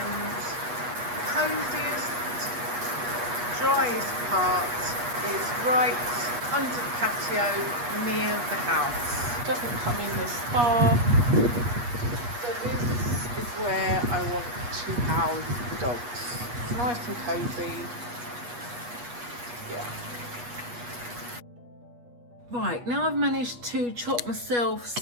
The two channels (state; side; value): late; left; 8.3 ms